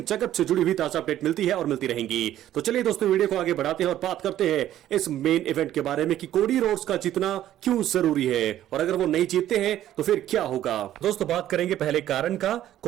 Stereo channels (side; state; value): left; quieter; 12.4 dB